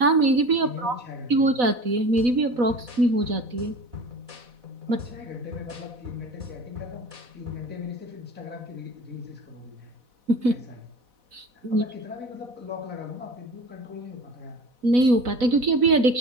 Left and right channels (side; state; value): left; late; 4.1 ms